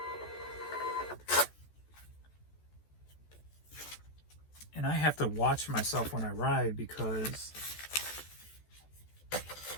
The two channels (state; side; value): late; right; 14 ms